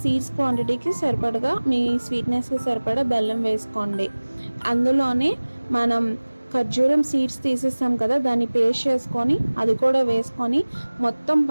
సీడ్స్ క్వాంటిటీకి సరిపడగా, మీ స్వీట్నెస్కి సరిపడా బెల్లం వేసుకోండి. అందులోనే మనం ఖర్జూరం సీడ్స్ తీసేస్తాం కదా, దాన్ని పేస్ట్ చేసుకొని అది కూడా వేసుకొని మొత్తం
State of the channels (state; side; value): inverted; both; correlation -1.00